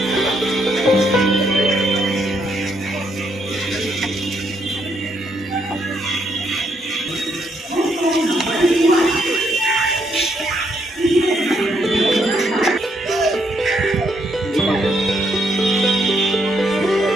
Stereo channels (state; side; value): normal; both; correlation 0.74